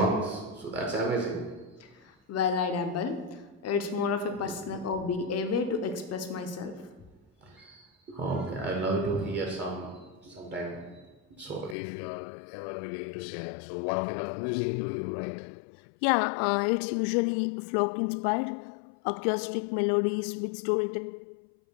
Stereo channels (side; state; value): right; drops out; at 11.8 s